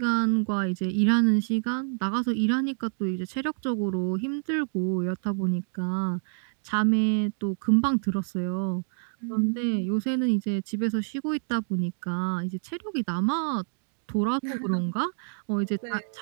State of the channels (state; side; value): silent; left; digital silence